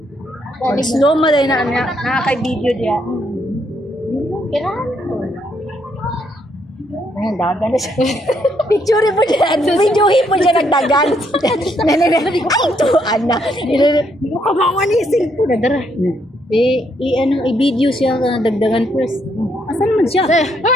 Slow mo din na nakaka-video diya. Kailangan. Ayan, dagan na siya. Picture po dyan. Videohin po dyan nagdagan. Ay, ito, Ana. Hindi ko kamawan yung cellphone na dara. I-video siya dagdagan first. Asan naman siya?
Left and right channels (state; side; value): normal; both; correlation 0.73